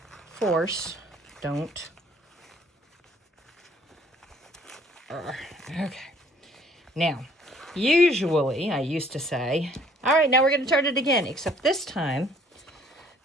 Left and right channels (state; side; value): normal; both; correlation 0.59